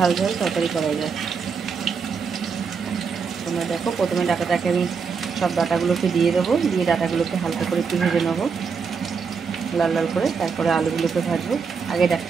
ঝাল তরকারি করা যায়। তোমরা দেখো, প্রথমে ডাঁটাটাকে আমি সব ডাঁটাগুলোকে দিয়ে দেবো, দিয়ে ডাঁটাগুলোকে হালকা করে একটু ভেজে নেবো লাল লাল করে, তারপরে আলুগুলোকে ভাজবো। আগে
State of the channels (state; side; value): quieter; left; 5.7 dB